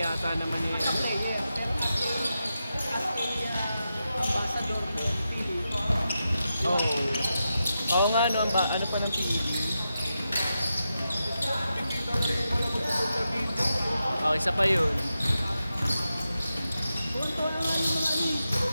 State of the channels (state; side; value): inverted; both; correlation -0.89